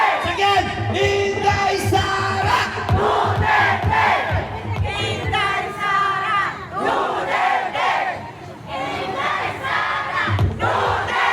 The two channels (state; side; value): identical; both; correlation 1.00